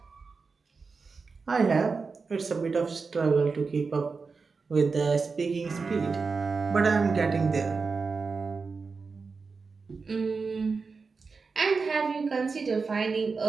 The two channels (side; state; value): left; quieter; 4.6 dB